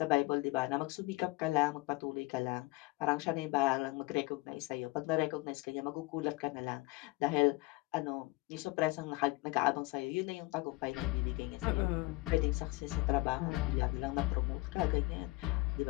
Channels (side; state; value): right; quieter; 22.3 dB